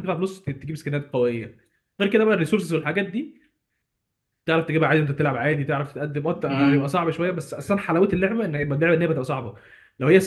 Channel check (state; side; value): identical; both; correlation 1.00